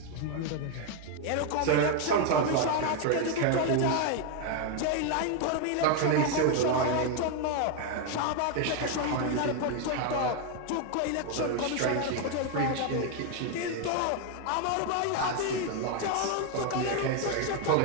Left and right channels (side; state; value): both; different; correlation 0.01